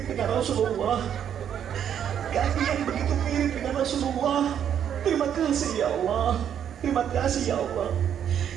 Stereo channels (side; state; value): left; quieter; 9.1 dB